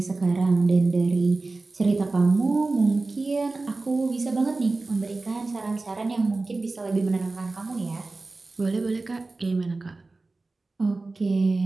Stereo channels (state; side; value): quieter; left; 3.4 dB